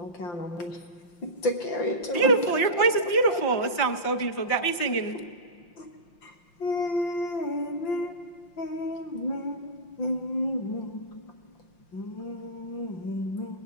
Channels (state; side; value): late; right; 5.7 ms